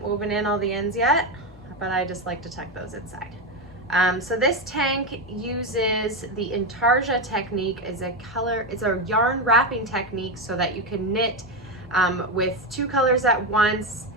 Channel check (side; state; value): both; normal; correlation 0.11